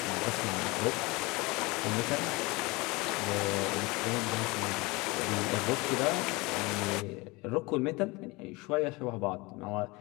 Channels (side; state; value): right; quieter; 24.4 dB